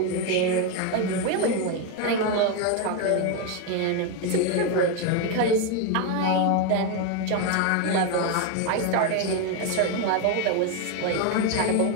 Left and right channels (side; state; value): both; different; correlation 0.02